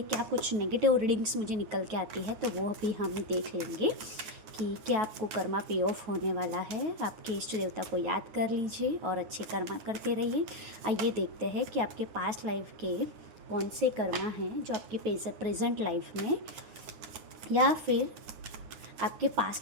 क्या कुछ नेगेटिव रीडिंग्स मुझे निकल के आती है, तो वो भी हम देख लेंगे कि क्या आपको कर्मा पे ऑफ होने वाला है। आपके इष्ट देवता को याद कर लीजिए और अच्छे कर्मा करते रहिए। आइए देखते हैं कि आपके पास्ट लाइफ के कौन से कर्मा हैं जो आपकी प्रेजेंट लाइफ में, या फिर आपके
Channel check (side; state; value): left; late; 9.3 ms